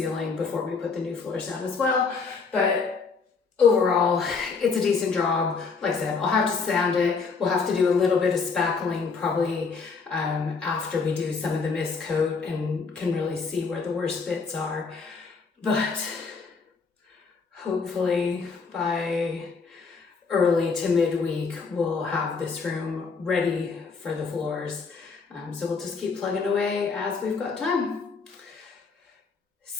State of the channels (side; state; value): right; quieter; 4.9 dB